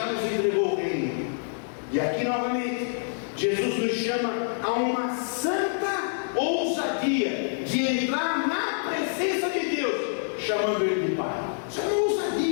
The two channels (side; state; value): right; silent; 60 dB below the other